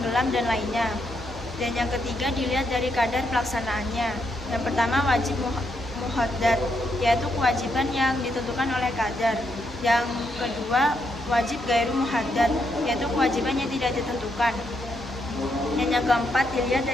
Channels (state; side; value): normal; both; correlation 0.79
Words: dan lainnya. Dan yang ketiga, dilihat dari kadar pelaksanaannya. Yang pertama, wajib muhaddad, yaitu kewajiban yang ditentukan oleh kadar. Yang kedua, wajib gairu muhaddad, yaitu kewajiban yang tidak ditentukan. Dan yang keempat, dilihat